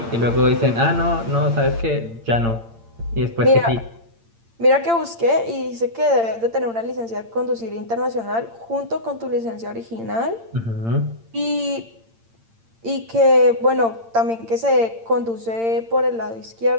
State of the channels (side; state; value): left; late; 8.8 ms